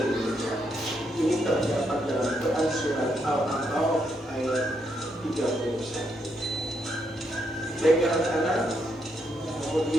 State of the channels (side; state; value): both; normal; correlation 0.78